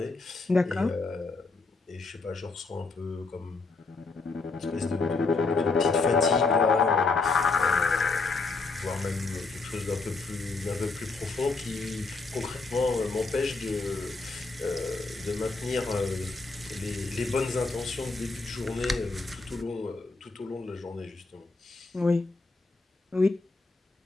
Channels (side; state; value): right; quieter; 3.9 dB